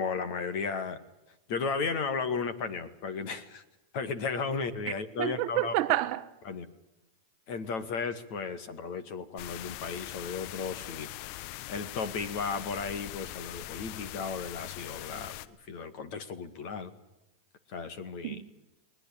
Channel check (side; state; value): right; late; 9.0 ms